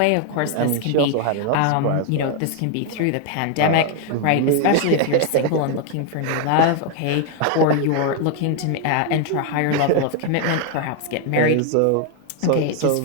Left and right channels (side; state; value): both; different; correlation 0.01